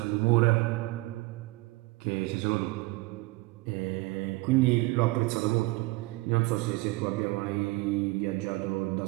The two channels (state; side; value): quieter; left; 22.1 dB